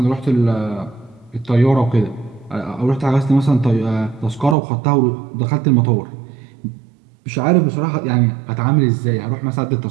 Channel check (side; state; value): left; drops out; at 4.5 s